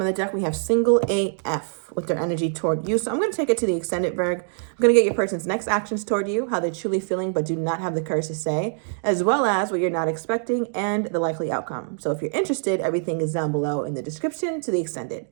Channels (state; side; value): silent; left; digital silence